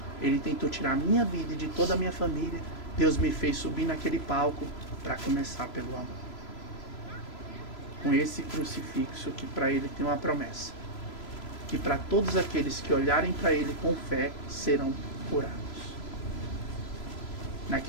ele tentou tirar a minha vida e de toda a minha família. Deus me fez subir naquele palco para começar pelo amor. Com esse crucifixo que para ele tem uma promessa. Que para todos aqueles que olharem para ele com fé, serão curados.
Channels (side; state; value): right; late; 3.0 ms